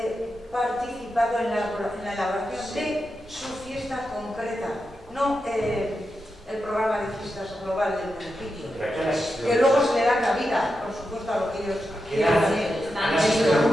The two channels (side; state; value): both; normal; correlation 0.88